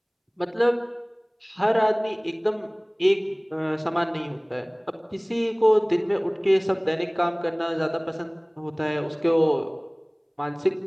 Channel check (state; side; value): identical; both; correlation 1.00